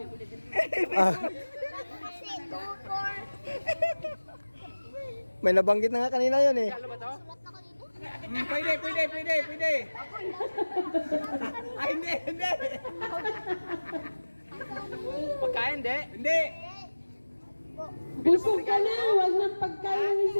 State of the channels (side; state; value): both; inverted; correlation -1.00